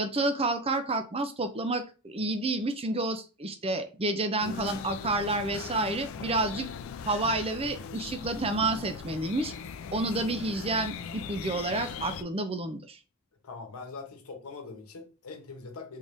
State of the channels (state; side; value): normal; both; correlation 0.21